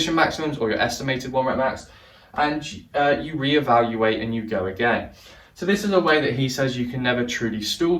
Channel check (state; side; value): identical; both; correlation 1.00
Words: maximums or your estimated 1 rep max, and you reevaluate and you go again. So this is a way that he says you can never truly stall,